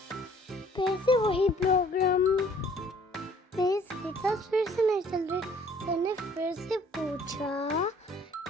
फिर से वही प्रोग्राम, मेरी स्केट्स फिर से नहीं चल रही। सर ने फिर से पूछा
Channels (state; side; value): normal; both; correlation 0.56